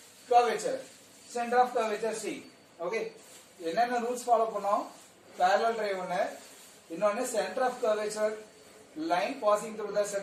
curvature, center of curvature C. Okay, என்னென்ன rules follow பண்ணோம்? Parallel ray ஒன்னு, இன்னொன்னு center of curvature, line passing through the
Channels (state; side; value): identical; both; correlation 1.00